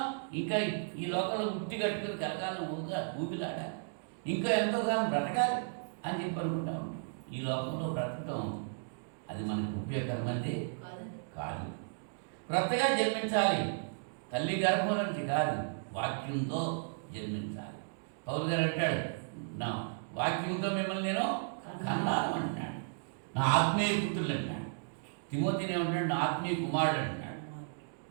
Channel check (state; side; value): silent; left; digital silence